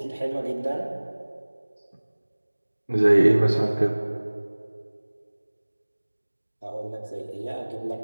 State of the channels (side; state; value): both; inverted; correlation -1.00